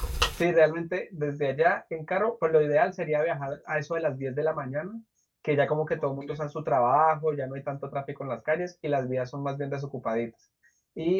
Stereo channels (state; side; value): identical; both; correlation 1.00